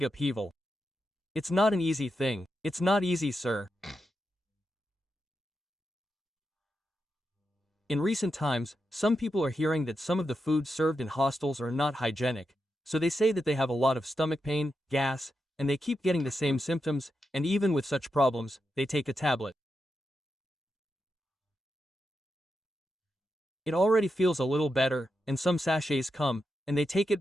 upheaval. It's not an easy thing. It's not easy, sir. In recent times, some people are hearing that some of the foods served in hostels are not hygienic, so they say that they have a lot of stomach pain, gas, and they keep getting the same symptoms, and even with such problems, they take a tablet. It already feels a little better, and some sachets come, and they take it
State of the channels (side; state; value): both; normal; correlation 0.87